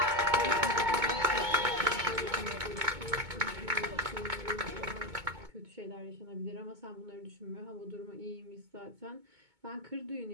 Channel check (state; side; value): late; left; 2.2 ms